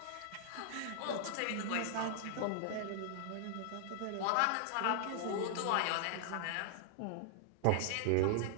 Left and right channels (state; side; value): different; both; correlation -0.01